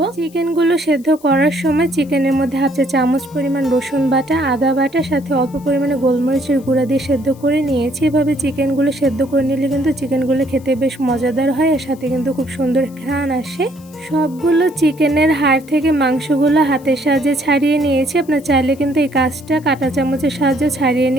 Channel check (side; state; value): left; noise; hiss, 26 dB below the sound